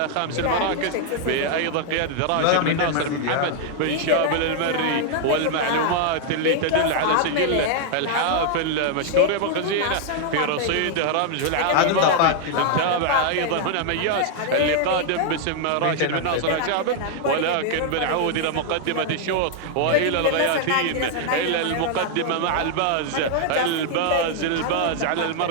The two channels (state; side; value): different; both; correlation 0.00